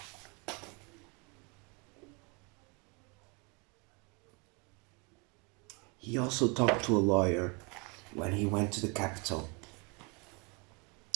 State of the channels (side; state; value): left; quieter; 31.0 dB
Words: He also talked to a lawyer when he went to the capital,